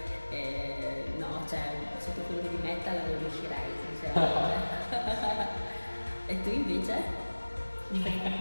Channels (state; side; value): inverted; both; correlation -1.00